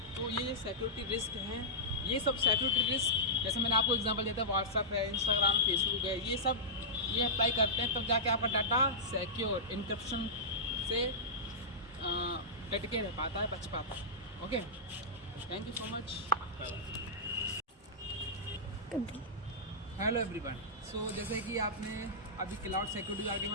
तो ये सिक्योरिटी रिस्क हैं. ये सब सिक्योरिटी रिस्क जैसे मैंने आपको एग्जांपल दिया था, व्हाट्सअप है, इंस्टाग्राम, फेसबुक है, ये सब ये अप्लाई करते हैं तब जाके आपका डाटा सिक्योर इनक्रिप्शन से डट के रह पाता है, बच पाता है. Okay, thank you so much. Hello everyone. So जैसे कि आपने अभी क्लाउड सिक्योरिटी के बारे में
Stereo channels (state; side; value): normal; both; correlation -0.15